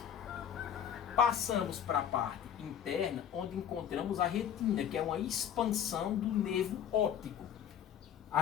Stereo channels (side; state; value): right; quieter; 9.3 dB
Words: Passamos para a parte interna, onde encontramos a retina, que é uma expansão do nervo óptico.